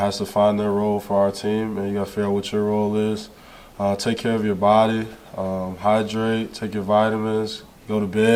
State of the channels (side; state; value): both; identical; correlation 1.00